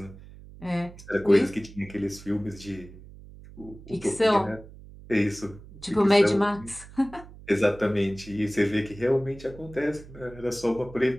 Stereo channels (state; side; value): noise; right; hum, 18 dB below the sound